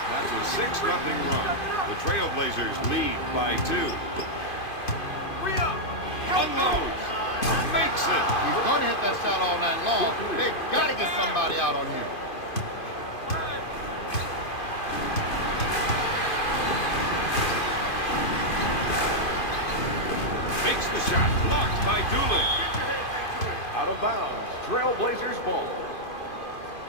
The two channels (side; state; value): right; late; 2.5 ms